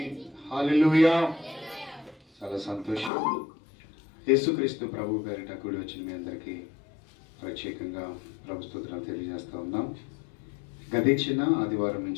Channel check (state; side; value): drops out; right; at 3.1 s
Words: హల్లెలూయా. చాలా సంతోషం. యేసుక్రీస్తు ప్రభు పేరిట కూడి వచ్చిన మీ అందరికీ ప్రత్యేకంగా ప్రభు స్తుతులను తెలియజేస్తూ ఉన్నాం. గతించిన ఆదివారం